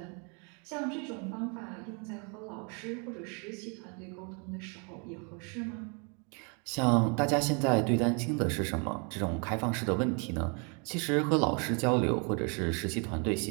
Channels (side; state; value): left; quieter; 35.6 dB